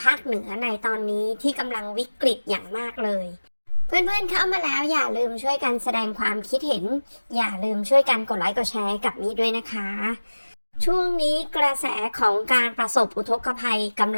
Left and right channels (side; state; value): both; inverted; correlation -1.00